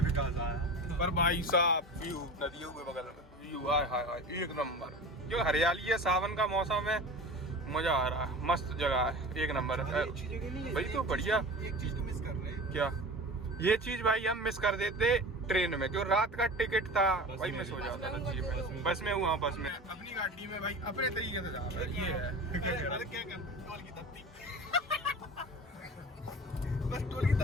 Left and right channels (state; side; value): normal; both; correlation 0.34